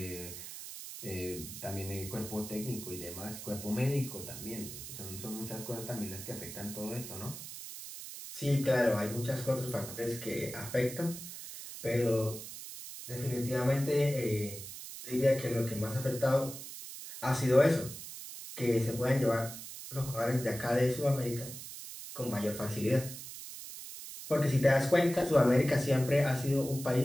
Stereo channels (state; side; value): noise; right; hiss, 11 dB below the sound